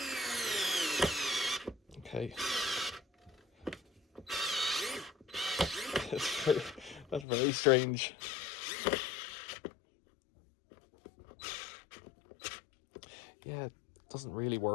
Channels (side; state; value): right; drops out; at 7.2 s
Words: Okay. That's very strange. Yeah, it doesn't really